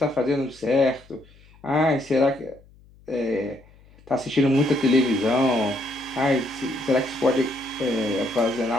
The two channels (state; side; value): noise; left; hum, 27 dB below the sound